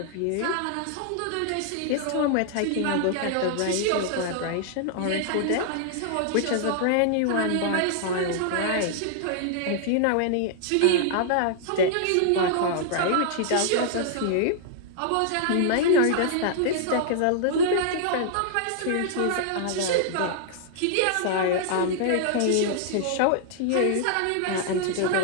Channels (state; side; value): different; both; correlation -0.01